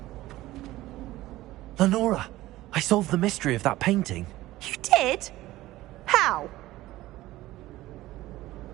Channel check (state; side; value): quieter; left; 16.7 dB